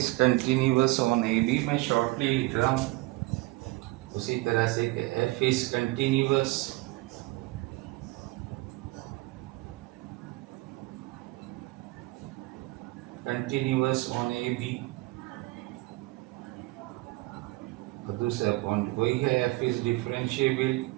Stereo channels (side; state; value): left; quieter; 21.3 dB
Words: continuous on a b, मैं शॉर्टली लिख रहा हूँ उसी तरह से कि f is continuous on a b, और दूसरा पॉइंट वही है f is